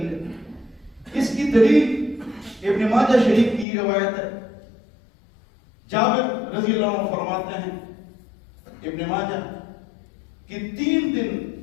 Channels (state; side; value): drops out; right; at 3.7 s